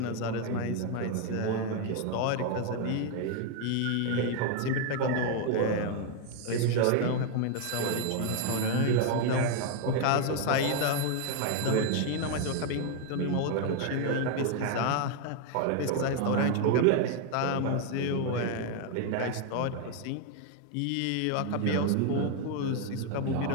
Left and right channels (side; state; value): both; different; correlation 0.00